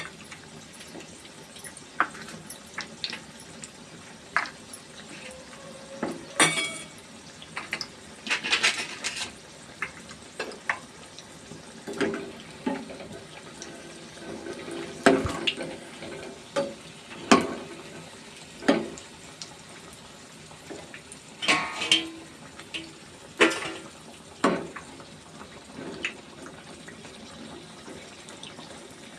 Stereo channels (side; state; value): both; identical; correlation 1.00